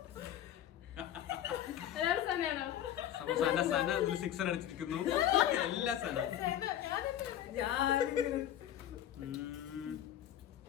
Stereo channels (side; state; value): right; quieter; 11.2 dB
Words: എല്ലാവരും സമയാണോ? അപ്പൊ സന ഇതിൽ 6 അടിച്ചിരിക്കുന്നു. എല്ലാ സന.